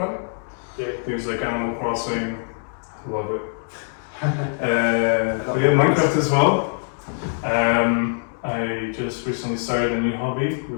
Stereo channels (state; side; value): silent; right; digital silence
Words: Yeah. Things like Animal Crossing. I love it. We have Minecraft as well. I just recently started a new hobby